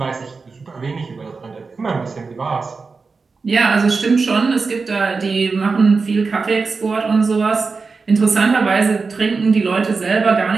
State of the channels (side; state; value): left; quieter; 4.5 dB